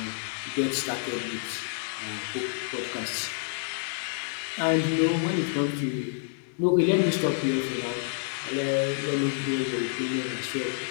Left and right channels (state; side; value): silent; right; digital silence